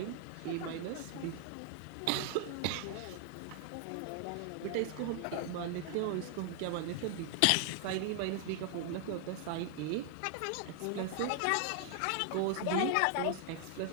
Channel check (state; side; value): different; both; correlation 0.00